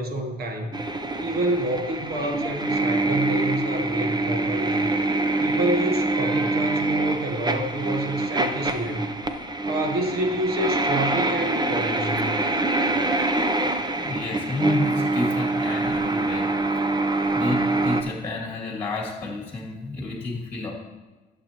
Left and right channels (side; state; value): both; normal; correlation 0.46